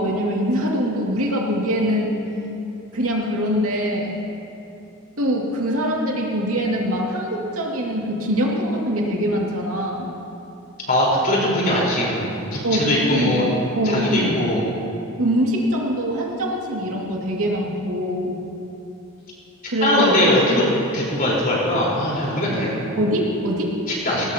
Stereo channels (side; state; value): both; normal; correlation 0.30